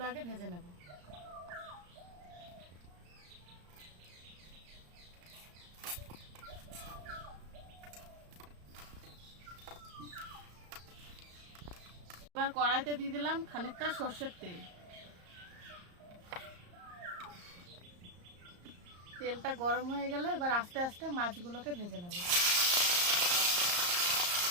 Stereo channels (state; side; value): late; left; 34 ms